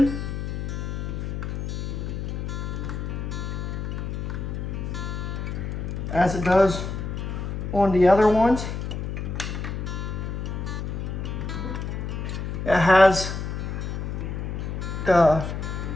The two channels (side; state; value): left; noise; hum, 4 dB below the sound